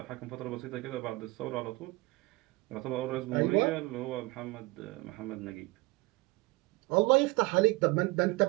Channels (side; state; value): left; quieter; 23.0 dB